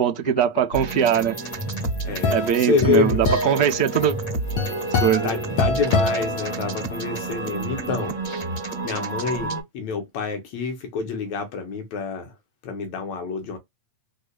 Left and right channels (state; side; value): late; right; 8.5 ms